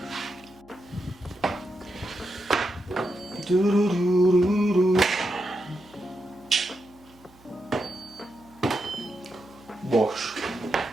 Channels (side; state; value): right; noise; hum, 27 dB below the sound